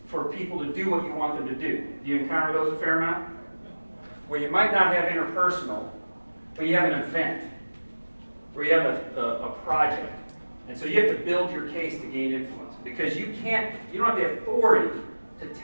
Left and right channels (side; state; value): both; inverted; correlation -1.00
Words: for people to do what you want them to do. Do you encounter those a fair amount? Where you might not have interpersonal, but you have an event, where you have a project. And so you have to build your case to gain influence. Because you don't have the authority to